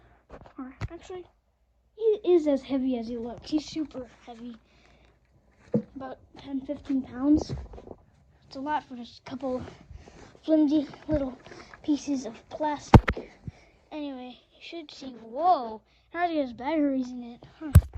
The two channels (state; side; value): identical; both; correlation 1.00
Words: Or actually, he is as heavy as he looks. He's super heavy, about 10-15 pounds. It's a lot for just a couple flimsy little pieces of plastic. Anyway, you should see, whoa, now he has batteries in it. Huh.